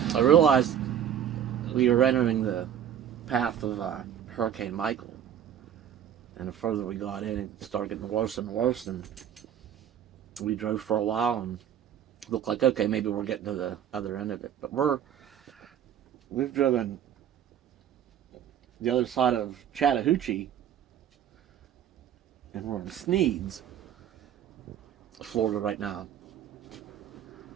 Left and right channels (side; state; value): left; quieter; 9.7 dB